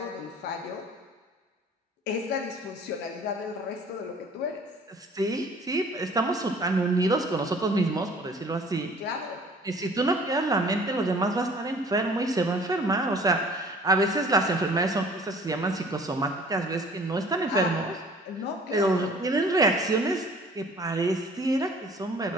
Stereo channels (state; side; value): normal; both; correlation 0.51